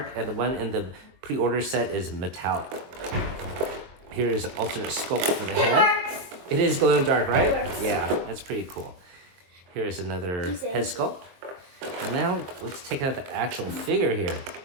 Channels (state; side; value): late; left; 22 ms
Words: and the one in the pre-order set is metallic. Here is an alternate sculpt for the It head. works. It is glow in the dark, right? It works. Yeah, that's pretty cool. Here is another You say. head sculpt. And now let's take out the actual figure here.